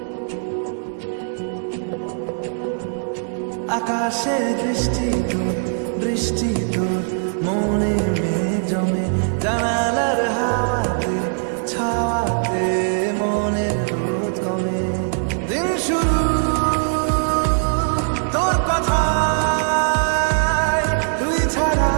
আকাশে বৃষ্টি তোর, বৃষ্টি তোর মনে মেঘ জমে, জানালার হাওয়াতে ছাওয়াতে মনের রোদ কমে। দিন শুরু তোর কথায়, তুই ছাড়া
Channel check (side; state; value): left; silent; digital silence